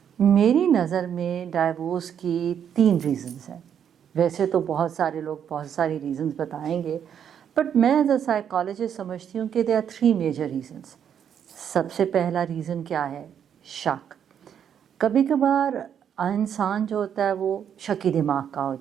میری نظر میں ڈائیورس کی 3 ریزنز ہیں. ویسے تو بہت سارے لوگ بہت ساری ریزنز بتائیں گے، بٹ میں ایز اے سائیکالوجسٹ سمجھتی ہوں کہ دے آر 3 میجر ریزنز. سب سے پہلا ریزن کیا ہے؟ شک. کبھی کبھار انسان جو ہوتا ہے وہ شکی دماغ کا ہو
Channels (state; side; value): quieter; left; 8.6 dB